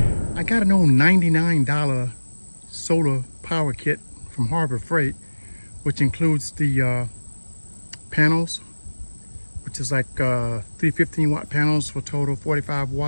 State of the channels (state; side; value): inverted; both; correlation -1.00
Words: got an old $99 solar power kit from Harbor Freight, which includes the panels, which is like 315 watt panels for total 45